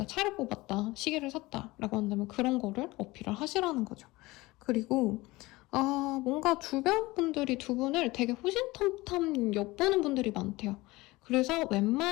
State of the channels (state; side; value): quieter; right; 20.7 dB